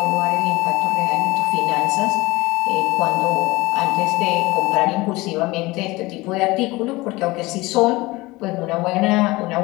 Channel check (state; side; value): quieter; right; 21.3 dB